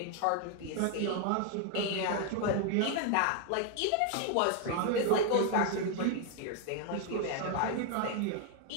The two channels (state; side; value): different; both; correlation 0.00